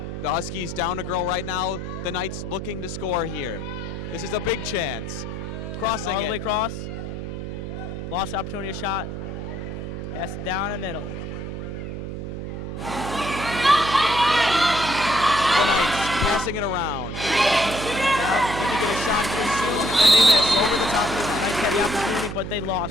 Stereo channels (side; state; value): right; noise; hum, 6 dB below the sound